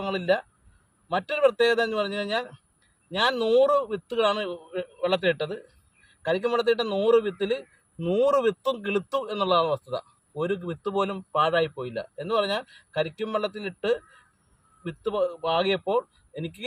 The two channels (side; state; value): both; identical; correlation 1.00